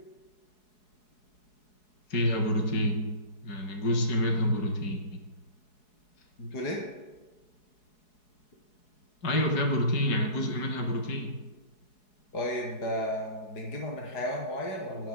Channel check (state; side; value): late; right; 4.7 ms